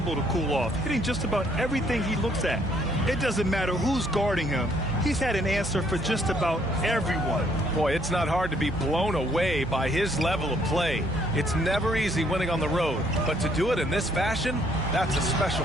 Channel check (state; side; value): noise; right; hum, 15 dB below the sound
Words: to cool off, hitting just about everything he looks at. It doesn't matter who's guarding him. He's had an answer for just about everyone. Boy, it's not hard to be blown away by his level of play. It's never easy winning on the road, but to do it in this fashion, that's a special